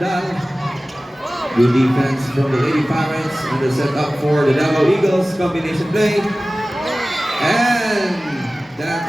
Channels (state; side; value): normal; both; correlation 0.97